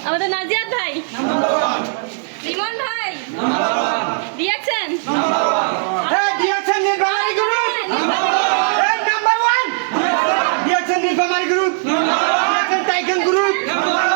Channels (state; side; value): silent; left; digital silence